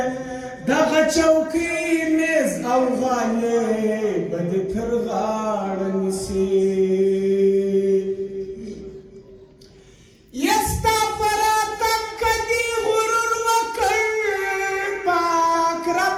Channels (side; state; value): both; identical; correlation 1.00